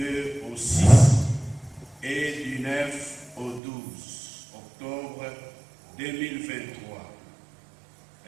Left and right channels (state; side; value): drops out; left; at 3.6 s